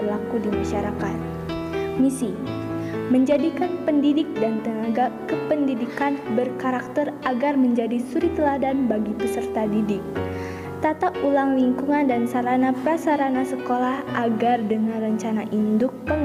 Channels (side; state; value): both; identical; correlation 1.00